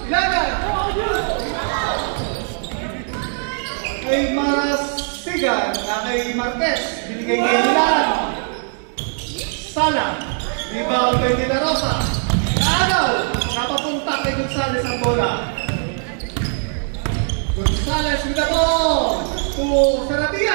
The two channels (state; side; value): silent; left; 58 dB below the other